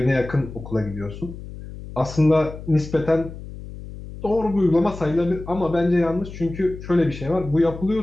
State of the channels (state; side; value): noise; left; hum, 13 dB below the sound